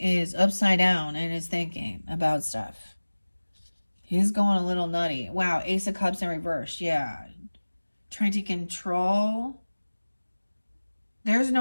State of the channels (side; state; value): both; inverted; correlation -1.00